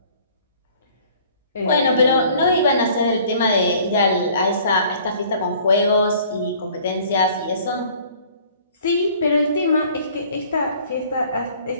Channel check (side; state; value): both; inverted; correlation -0.53